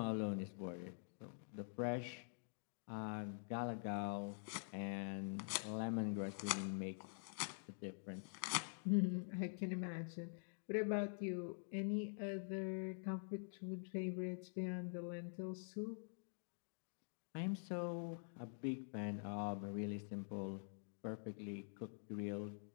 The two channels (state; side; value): silent; right; digital silence